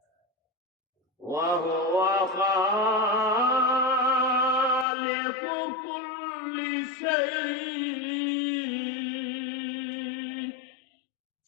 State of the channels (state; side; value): drops out; right; at 4.9 s